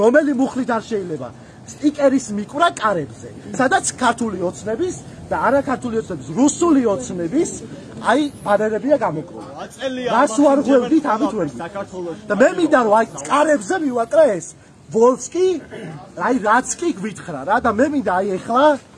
რომელი მუხლით არ შეიძლება სტიკერის მიკვრა კარებზე სადაც ქართული ოცნების და არა ქართული ოცნების რუსული ოცნების აი ბანერებია გამოკრული რას ვარღვევდით ამით ვერ და მე მინდა რომ აი კარებზე მივაკრა ეს ვოლსკი აი რაც კი გვითხრა რა და მე მინდა აი ეხლა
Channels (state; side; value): identical; both; correlation 1.00